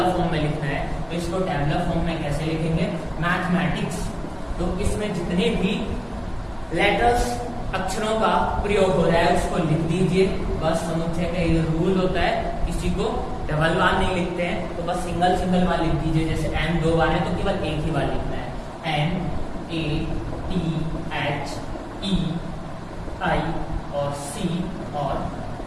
फॉर्म में लिखना है। तो इसको टैबुलर फॉर्म में कैसे लिखेंगे? मैथमेटिक्स, तो इसमें जितने भी लेटर्स अक्षरों का प्रयोग हो रहा है उसको लिख दीजिए। बस समुच्चय का ये रूल होता है, किसी को डबल बार नहीं लिखते हैं, तो बस सिंगल बार लिख दीजिए। जैसे n 2 बार है तो केवल एक ही बार लिखना है, N A T H E I और C और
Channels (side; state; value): both; identical; correlation 1.00